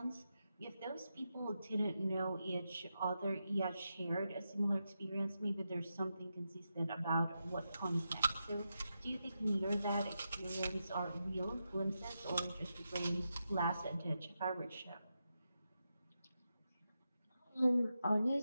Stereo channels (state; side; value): inverted; both; correlation -0.87